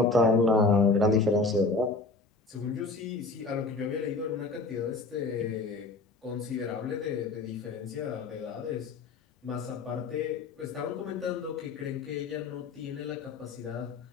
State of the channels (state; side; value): quieter; right; 3.7 dB